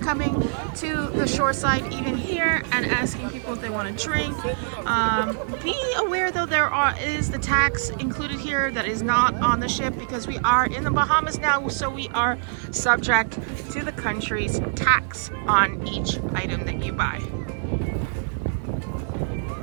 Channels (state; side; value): silent; left; digital silence